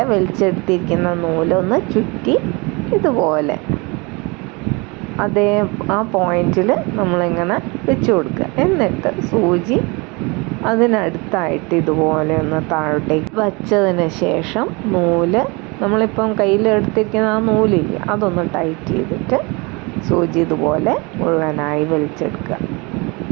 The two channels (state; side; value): quieter; left; 27.6 dB